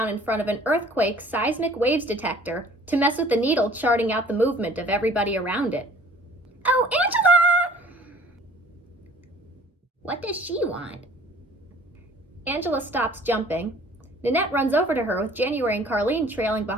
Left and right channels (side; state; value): both; normal; correlation 0.52